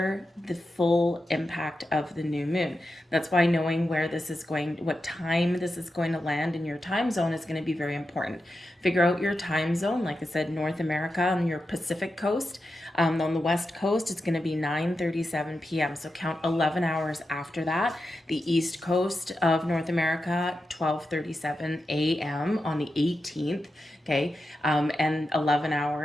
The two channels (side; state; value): both; normal; correlation 0.89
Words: the full impact of the new moon. That's why knowing where this is going, what time this is going to land in your time zone is going to be very important. Figure out your time zone. Like I said, North America on your Pacific coast. On the West Coast, it's going to be 9:37 p.m. So count 11 hours after that. The East Coast of North America, 12:37 a.m. on the 18th. Okay, and 11